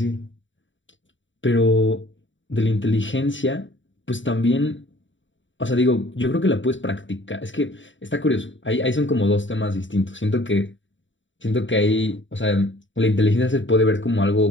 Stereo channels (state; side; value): late; right; 0.55 ms